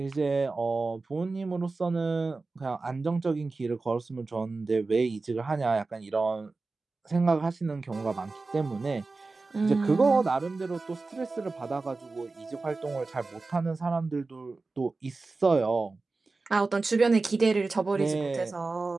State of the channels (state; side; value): quieter; left; 3.7 dB